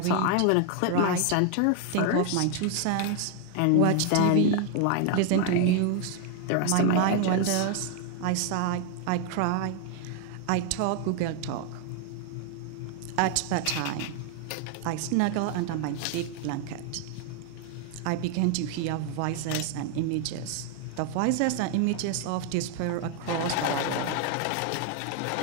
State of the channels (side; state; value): both; different; correlation 0.00